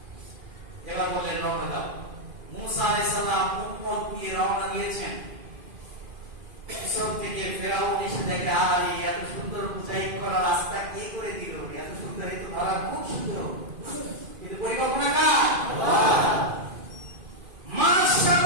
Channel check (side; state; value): left; late; 2.5 ms